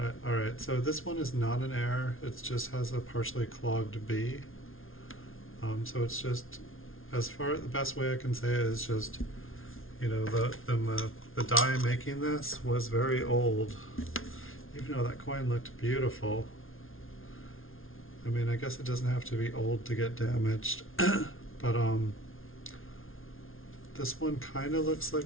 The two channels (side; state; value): right; late; 0.60 ms